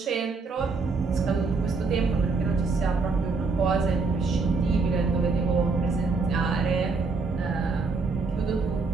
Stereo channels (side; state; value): left; quieter; 4.2 dB